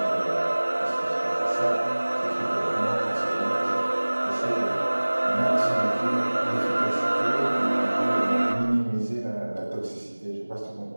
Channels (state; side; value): inverted; both; correlation -1.00